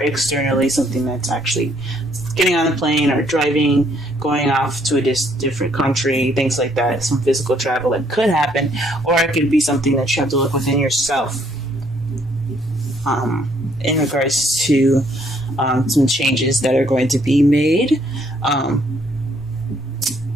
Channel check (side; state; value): both; normal; correlation 0.67